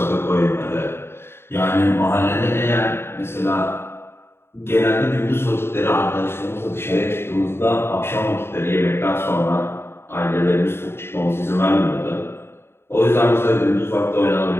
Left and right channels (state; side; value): late; right; 0.11 ms